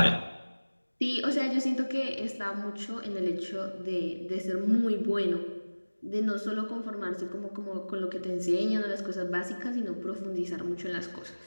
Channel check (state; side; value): inverted; both; correlation -1.00